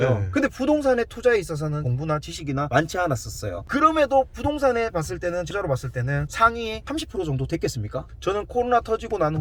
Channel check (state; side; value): identical; both; correlation 1.00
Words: 네. 근데 부동산의 투자에 있어서는 공부나 지식이나 많지 않았었어요. 그럼에도 부동산에 봤을 때는, 투자로 봤을 때는 상위 30% 정도 됐겠습니까? 저는 코로나 터지고 난